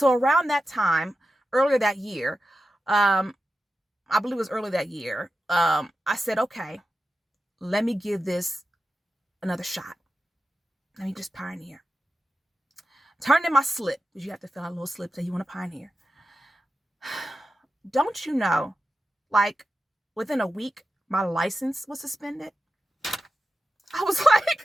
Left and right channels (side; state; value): both; normal; correlation 0.91